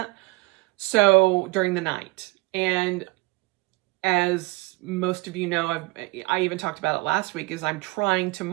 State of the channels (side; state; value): left; quieter; 24.0 dB